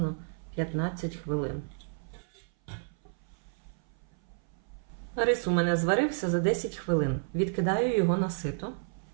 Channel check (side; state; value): left; silent; 56 dB below the other